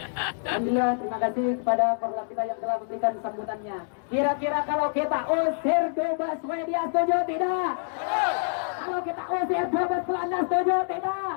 Alhamdulillah, terima kasih kepada perwakilan kita yang telah memberikan sambutannya. Kira-kira kalau kita usir bebas media, setuju tidak? Kalau kita usir bebas celana, setuju tidak?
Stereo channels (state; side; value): silent; right; 60 dB below the other